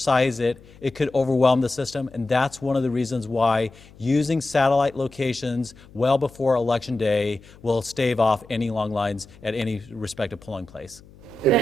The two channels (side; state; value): left; noise; hum, 23 dB below the sound